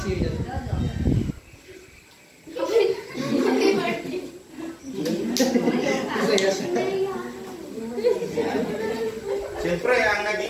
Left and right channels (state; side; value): identical; both; correlation 1.00